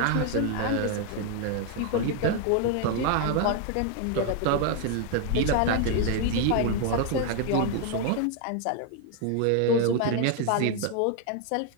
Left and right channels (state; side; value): different; both; correlation 0.01